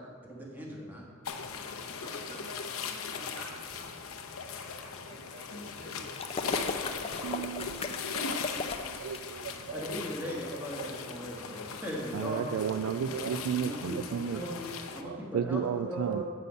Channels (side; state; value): both; normal; correlation 0.10